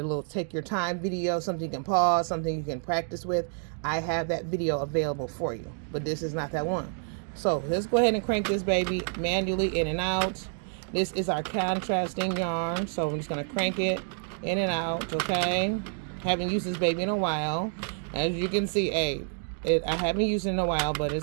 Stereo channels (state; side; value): silent; left; 59 dB below the other